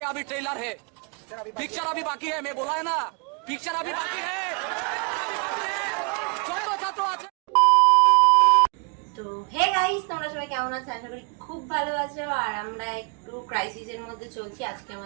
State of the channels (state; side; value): quieter; left; 34.4 dB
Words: अभी ट्रेलर है, पिक्चर अभी बाकी है। मैं बोला है ना, पिक्चर अभी बाकी है। তো হে গাইস, তোমরা সবাই কেমন আছো? আশা করি খুব ভালো আছো। আর আমরা একটু ক্রাইসিসের মধ্যে চলছি। আজকে